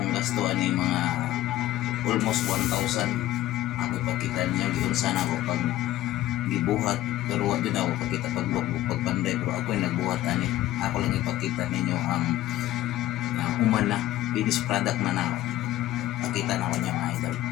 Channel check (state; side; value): quieter; right; 14.6 dB